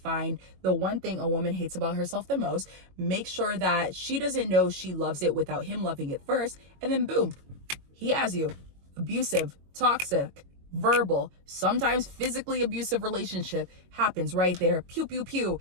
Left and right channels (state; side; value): late; left; 22 ms